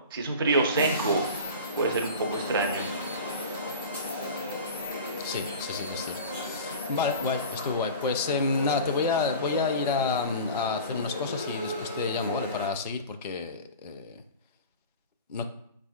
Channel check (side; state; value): both; inverted; correlation -0.36